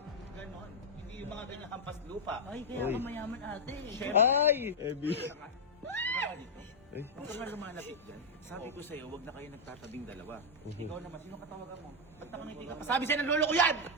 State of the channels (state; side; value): normal; both; correlation -0.01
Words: Ganon. Hindi yung mga ganyan hampas lupa. Ay, kaya Uy. ka mayaman, ate. Ay! Ebi. Ay. Huwag ka nga lumalapit dyan. Sabi ko sa'yo, huwag na kayo nagtatabing dalawa. Ikaw naman, sino katawagan mo? Ba't nakangiti ka pa? Sabi sa'yo, naglolo ko yan!